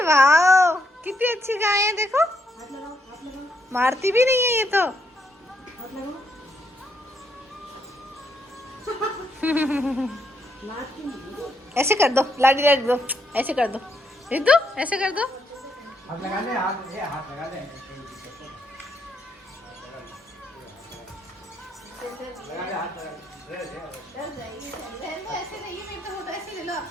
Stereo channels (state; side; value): normal; both; correlation 0.76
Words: वाह, कितनी अच्छी गाय है, देखो मारती भी नहीं है ये तो। ऐसे कर दो, लाडी रख दो, ऐसे कर दो, रख दो, ऐसे कर दो। हाथ लगा ले, हाथ लगा ले, ऐसे नहीं है, मेरे तो ऐसे ले लो,